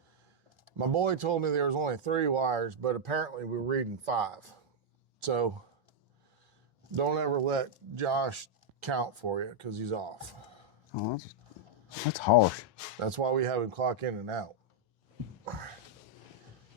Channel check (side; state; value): both; normal; correlation -0.03